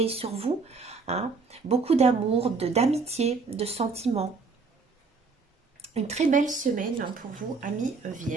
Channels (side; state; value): left; quieter; 4.5 dB